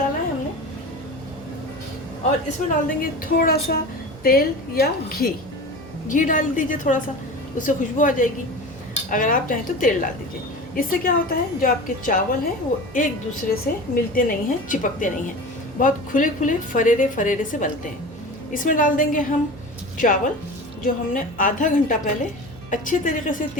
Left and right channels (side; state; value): right; noise; hum, 20 dB below the sound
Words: है हमने। और इसमें डाल देंगे थोड़ा सा तेल या घी डाल दीजिए थोड़ा सा, उससे खुशबू आ जाएगी। अगर आप चाहें तो तेल डाल दीजिए। इससे क्या होता है, जो आपके चावल हैं वो एक दूसरे से मिलते नहीं हैं, चिपकते नहीं हैं, बहुत खुले खुले फरेरे से बनते हैं। इसमें डाल देंगे हम चावल जो हमने आधा घंटा पहले अच्छे तरीके से